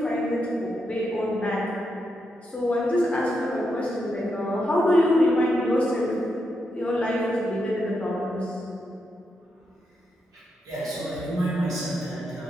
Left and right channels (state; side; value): normal; both; correlation 0.83